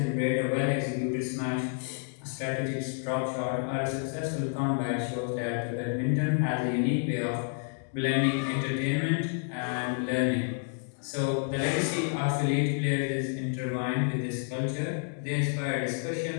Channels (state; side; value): silent; right; 58 dB below the other